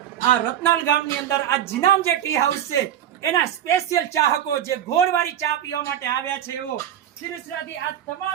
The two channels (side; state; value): left; quieter; 10.5 dB